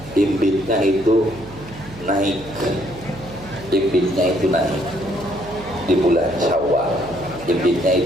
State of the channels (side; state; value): right; noise; hum, 17 dB below the sound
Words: imbitnya itu naik. Imbitnya itu naik di bulan Syawal. Imbitnya